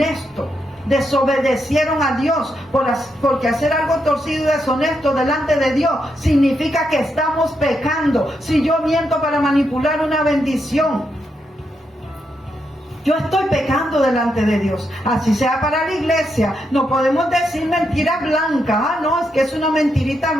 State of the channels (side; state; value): both; normal; correlation 0.82